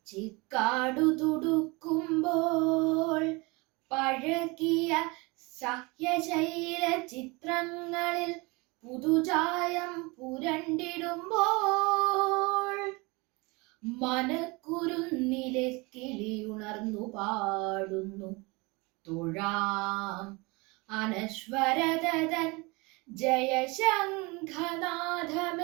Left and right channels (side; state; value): left; quieter; 26.2 dB